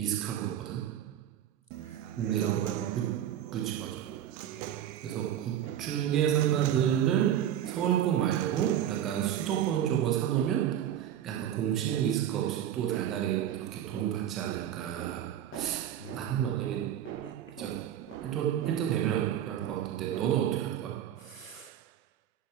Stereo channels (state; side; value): quieter; left; 10.7 dB